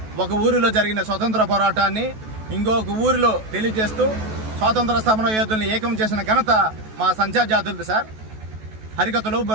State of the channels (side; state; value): left; late; 14 ms